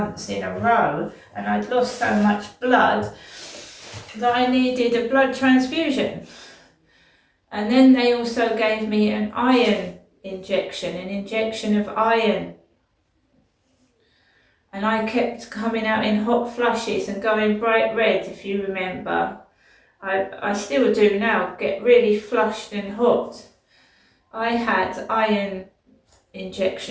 in a row, and I'd lost so much blood that I needed a blood transfusion. And then they also gave me an iron injection, an injection of iron. And I kept coming out in hot flushes and going bright red, if you remember. I still do now, get really flushed and hot. I had iron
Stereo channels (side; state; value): both; identical; correlation 1.00